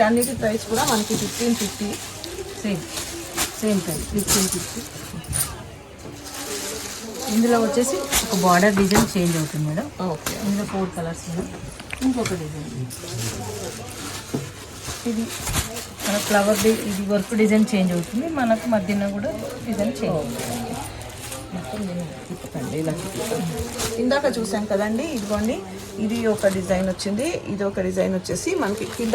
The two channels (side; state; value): both; identical; correlation 1.00